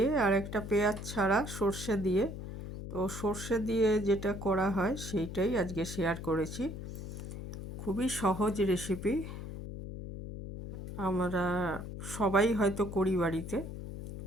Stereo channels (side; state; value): left; noise; hum, 9 dB below the sound